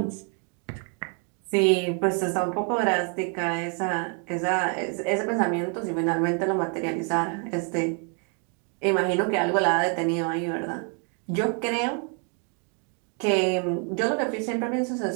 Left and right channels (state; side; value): quieter; left; 39.7 dB